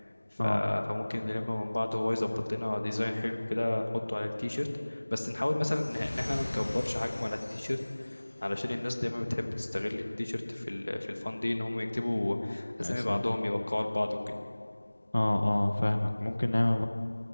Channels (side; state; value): both; inverted; correlation -1.00